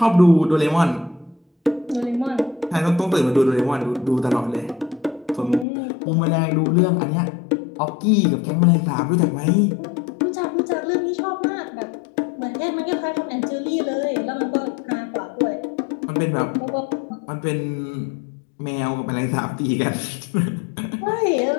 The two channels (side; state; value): right; drops out; at 5.7 s